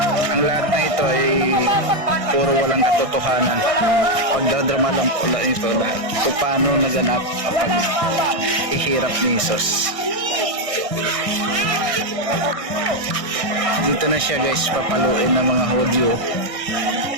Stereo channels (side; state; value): left; late; 1.6 ms